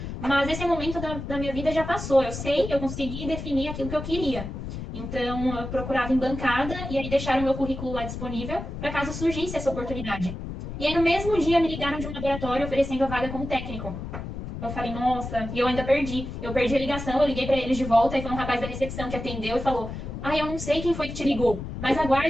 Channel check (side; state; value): left; noise; rumble, 7 dB below the sound